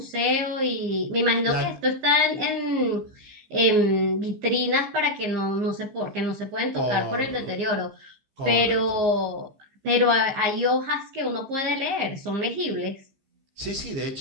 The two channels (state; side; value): late; left; 15 ms